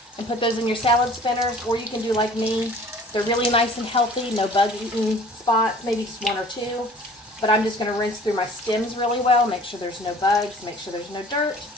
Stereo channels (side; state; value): both; normal; correlation 0.49